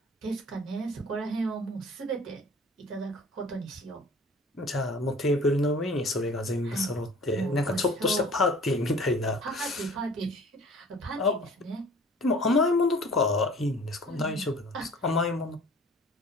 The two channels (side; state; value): both; normal; correlation 0.47